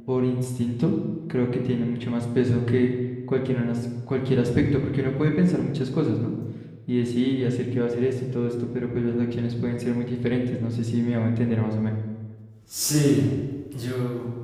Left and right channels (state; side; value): identical; both; correlation 1.00